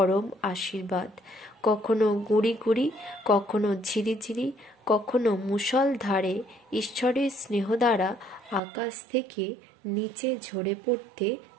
আশীর্বাদ। কখনো গুঁড়ি গুঁড়ি, কখনো ঝিরিঝিরি, কখনো মুষলধারে ঈশ্বরের স্নেহ দ্বারা আকাশ থেকে নিচে ঝরে পড়তে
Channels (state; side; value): drops out; left; at 8.6 s